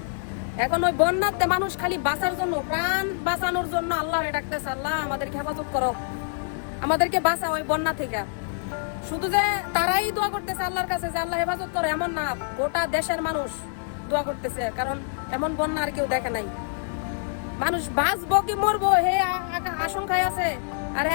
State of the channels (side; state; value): right; silent; digital silence